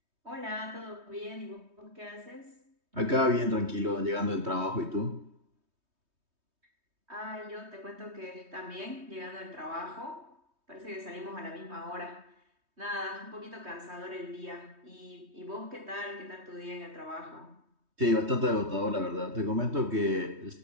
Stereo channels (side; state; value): left; late; 3.2 ms